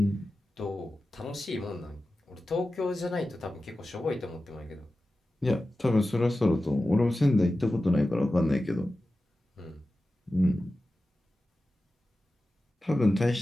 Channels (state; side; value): normal; both; correlation 0.94